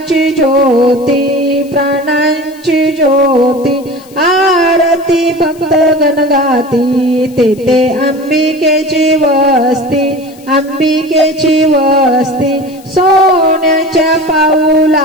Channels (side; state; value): left; noise; hiss, 25 dB below the sound